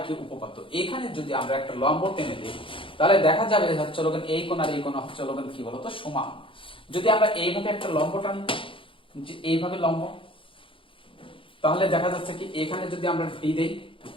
কি উপপাদ্য। এখানে যদি আমরা একটা লম্ব টেনে দিই তাহলে দেখা যাবে হচ্ছে হলো এই কোণ আর এই কোণ হচ্ছে হলো কি বলতো সমান। যদি আমরা এইভাবে একটা লম্ব টানি, যে এইভাবে লম্ব, তাহলে দেখা যাচ্ছে কি এখানে যদি আমরা ডি দেই,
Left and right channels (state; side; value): late; right; 0.25 ms